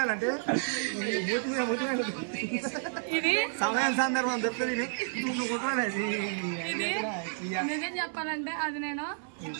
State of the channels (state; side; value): silent; left; 57 dB below the other